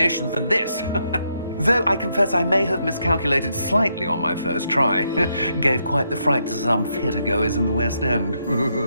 than this. Though I confess I may have miscalculated slightly on my first try. Gave quite the fright to some theatre-goers in the West End.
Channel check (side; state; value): both; inverted; correlation -0.78